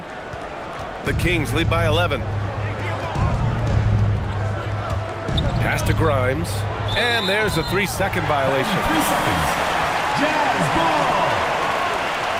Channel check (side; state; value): both; identical; correlation 1.00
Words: The Kings lead by 11. Pass to Grimes. And there's a 3-second violation. 3 seconds. Jazz ball.